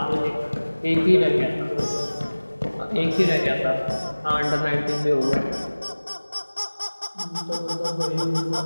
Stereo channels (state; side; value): inverted; both; correlation -1.00